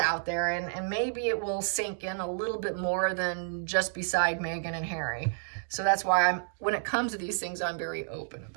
there and maybe it will sink in a little bit more than just beside Megan and Harry. So that's why when it comes to these things, I'm very open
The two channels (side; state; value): left; silent; digital silence